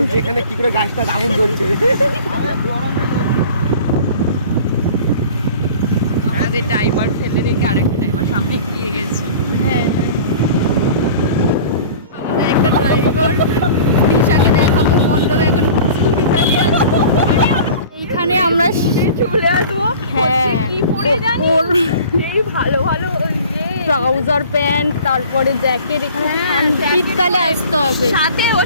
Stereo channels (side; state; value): both; inverted; correlation -0.43